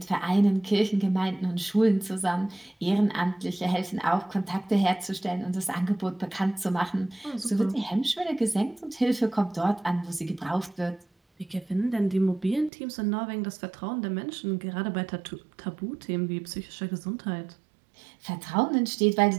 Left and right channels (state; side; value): drops out; left; at 12.7 s